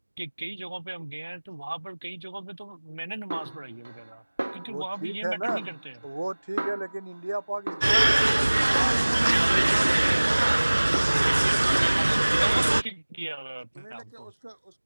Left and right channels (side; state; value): both; inverted; correlation -1.00